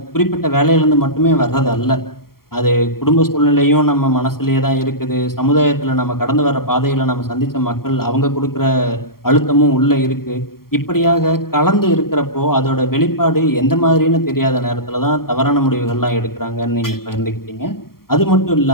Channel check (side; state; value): right; late; 0.93 ms